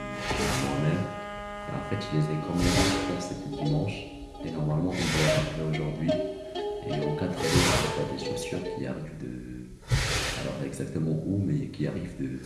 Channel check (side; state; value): both; identical; correlation 1.00